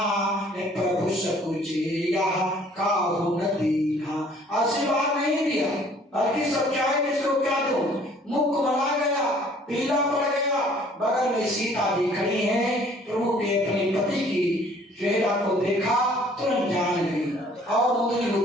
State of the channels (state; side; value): normal; both; correlation 0.56